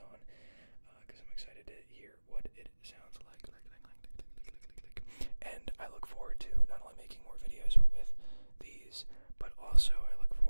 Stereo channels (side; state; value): both; inverted; correlation -1.00